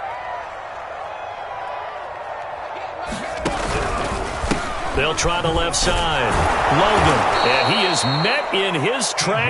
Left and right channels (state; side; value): identical; both; correlation 1.00